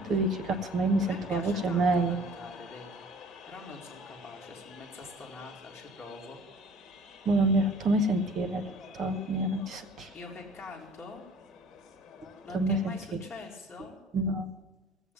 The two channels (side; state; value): both; normal; correlation 0.49